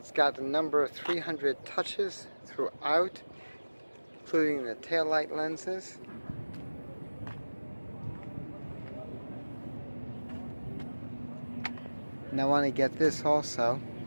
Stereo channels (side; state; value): both; inverted; correlation -1.00